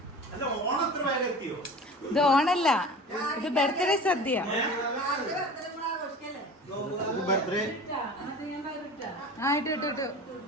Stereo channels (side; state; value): both; normal; correlation 0.37